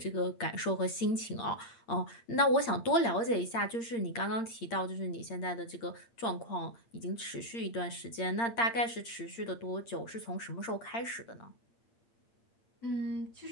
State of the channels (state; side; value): late; right; 8.7 ms